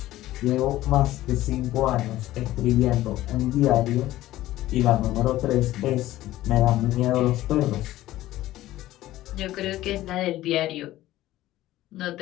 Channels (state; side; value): quieter; right; 15.4 dB